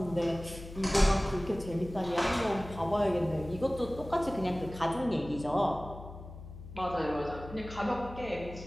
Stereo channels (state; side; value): noise; left; hum, 13 dB below the sound